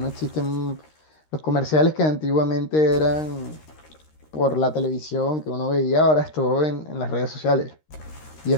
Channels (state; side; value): late; right; 13 ms